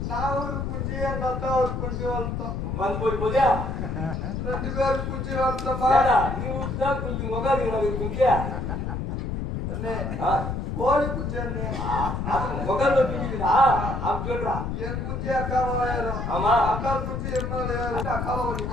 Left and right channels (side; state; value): left; noise; rumble, 3 dB below the sound